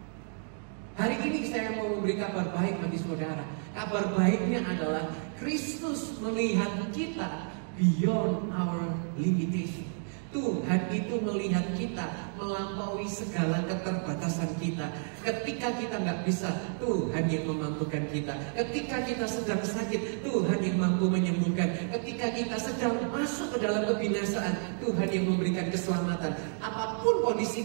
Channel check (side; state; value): left; silent; 57 dB below the other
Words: Hari ini saya mau memberi kabar baik bagi saudara. Kabar baiknya adalah Kristus melihat kita beyond our limitation. Tuhan itu melihat kita melampaui segala keterbatasan kita. Ketika kita nggak bisa, Tuhan yang memampukan kita. Ketika kita sedang sakit, Tuhan yang mampu menyembuhkan. Ketika kita sedang masuk ke dalam kebinasaan, Tuhan yang memberikan keselamatan. Apapun kondisi